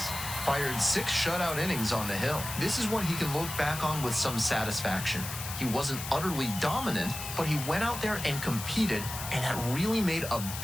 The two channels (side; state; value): left; noise; hiss, 8 dB below the sound